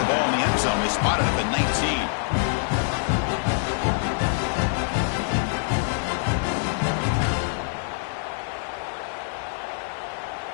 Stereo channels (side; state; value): right; silent; 61 dB below the other